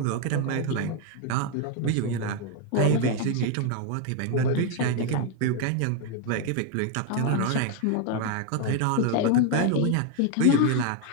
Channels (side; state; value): both; different; correlation 0.01